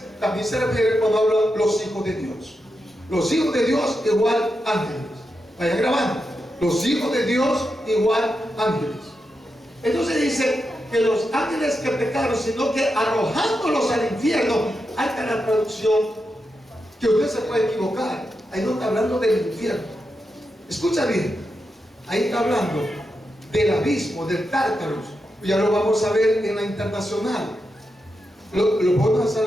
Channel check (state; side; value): normal; both; correlation 0.87